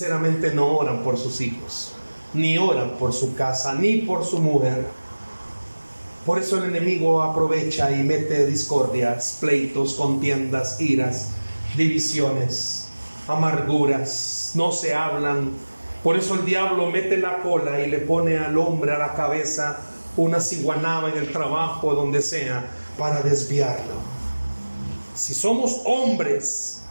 no oran por sus hijos? Ni oran por su casa, ni por su mujer. Por eso el enemigo aprovecha y mete discordias, pleitos, contiendas, iras, divisiones, amarguras, no se hablan. Por eso el diablo mete la cola y le pone al hombre a la cabeza una ciguanaba en el trabajo, donde sea, para desviarlo. Si somos hombres,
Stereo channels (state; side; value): inverted; both; correlation -1.00